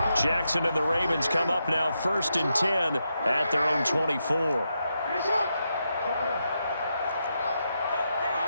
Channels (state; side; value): inverted; both; correlation -0.84